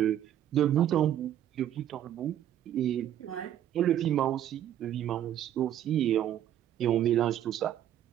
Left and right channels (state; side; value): quieter; left; 11.2 dB